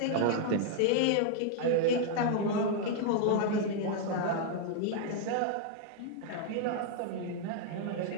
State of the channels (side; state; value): both; different; correlation -0.01